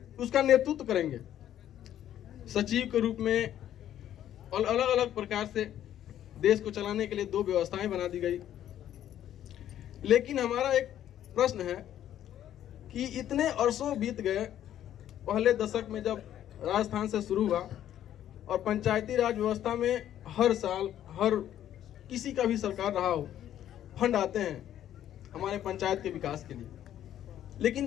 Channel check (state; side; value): quieter; right; 11.3 dB